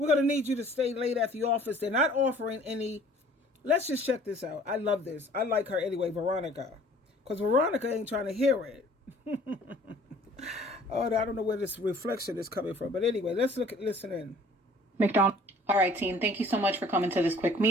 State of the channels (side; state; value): both; normal; correlation 0.53